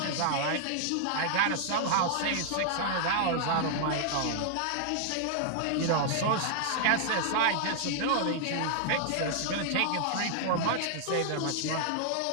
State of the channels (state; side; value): different; both; correlation -0.01